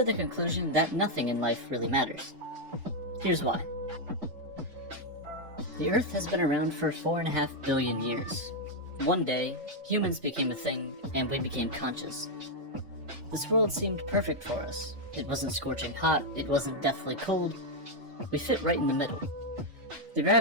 the conclusion that nothing in life really matters. Here's why. The Earth has been around for 4.5 billion years. One day, humans became a thing, and we became conscious. This world seemed perfect for us. It wasn't scorching hot, it wasn't deathly cold. We fit right in the middle. The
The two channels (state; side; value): late; left; 3.5 ms